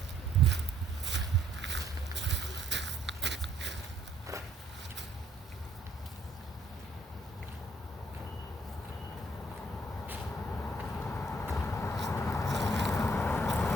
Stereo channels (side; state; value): both; normal; correlation 0.67